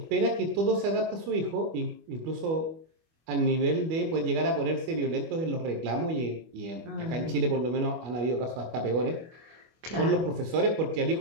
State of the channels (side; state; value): left; late; 25 ms